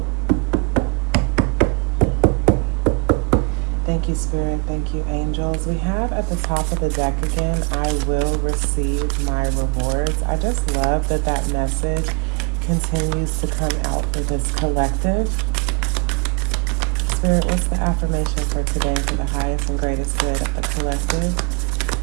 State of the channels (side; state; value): left; quieter; 32.9 dB